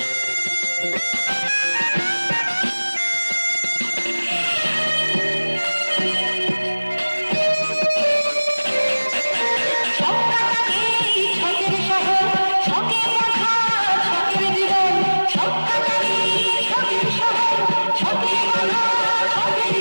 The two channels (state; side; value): inverted; both; correlation -1.00